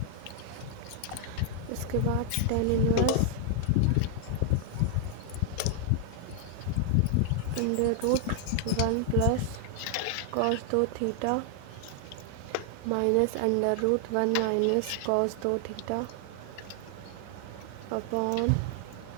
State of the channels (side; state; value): both; different; correlation 0.00